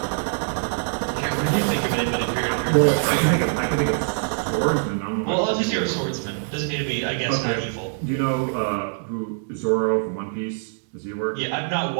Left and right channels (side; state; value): left; silent; digital silence